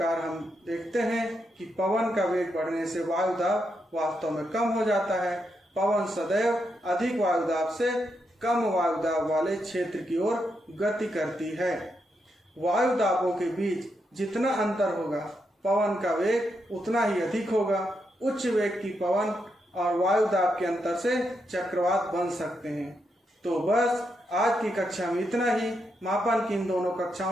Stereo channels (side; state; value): both; normal; correlation 0.82